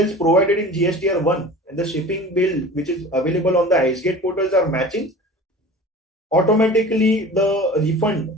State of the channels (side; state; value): both; normal; correlation 0.39